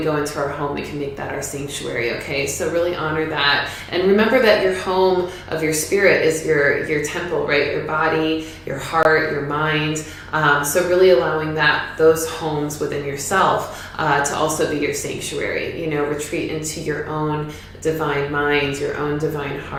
go into our home, we can make that our sanctuary, okay? So really honor that. And remember that your home of your spirit is your temple, right? Your body, your heart, your mind. So really allowing those homes within yourself to also be your sanctuary. Retreat into your own divine mind, your own divine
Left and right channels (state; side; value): identical; both; correlation 1.00